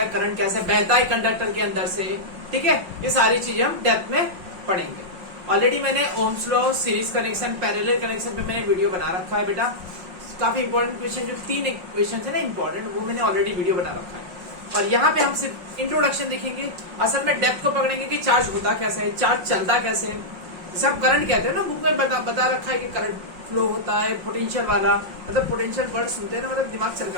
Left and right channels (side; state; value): left; late; 5.5 ms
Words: है, करंट कैसे बहता है कंडक्टर के अंदर से। ठीक है, ये सारी चीजें हम डेप्थ में पढ़ेंगे। ऑलरेडी मैंने Ohm's law, series connection, parallel connection पे मैंने वीडियो बना रखा है बेटा। काफी इंपॉर्टेंट क्वेश्चन, जो 3 क्वेश्चन थे ना इंपॉर्टेंट, वो मैंने ऑलरेडी वीडियो बना रखा है। और यहाँ पे हम सिर्फ इंट्रोडक्शन देखेंगे, असल में डेप्थ को पकड़ेंगे कि चार्ज होता कैसे है, चार्ज चलता कैसे है। सब करंट कहते हैं ना, बुक में बता रखा है कि करंट फ्लो होता है पोटेंशियल वाला। मतलब पोटेंशियल वर्ड सुनते हैं ना, मतलब दिमाग चल